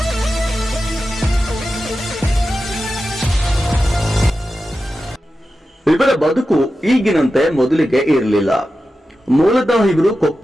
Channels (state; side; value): normal; both; correlation 0.92